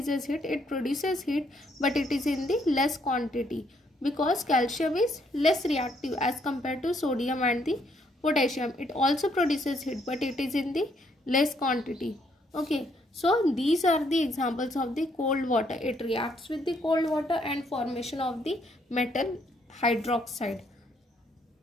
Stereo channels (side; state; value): both; normal; correlation 0.71